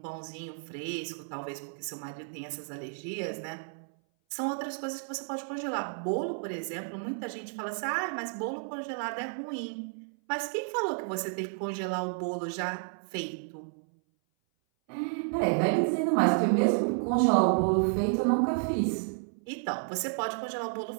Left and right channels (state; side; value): silent; left; 57 dB below the other